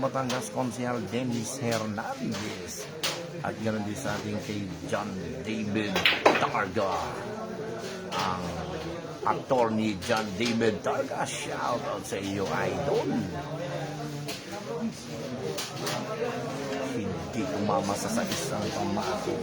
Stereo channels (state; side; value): identical; both; correlation 1.00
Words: konsehal Dennis Hernandez. At ganoon din sa ating kay John David Targa. Ang attorney John David Targa. Shout out sa iyo, idol. Hindi umamasa sa isang pamako.